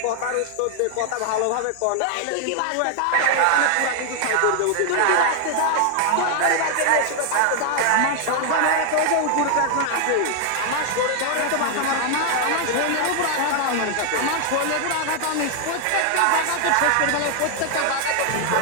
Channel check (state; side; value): different; both; correlation 0.00